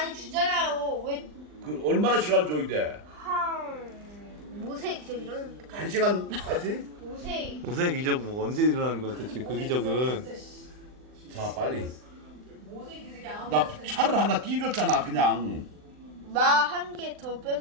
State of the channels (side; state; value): left; late; 39 ms